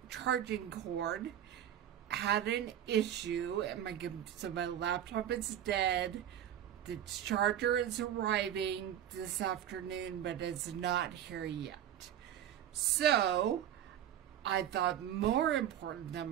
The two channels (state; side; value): quieter; left; 10.8 dB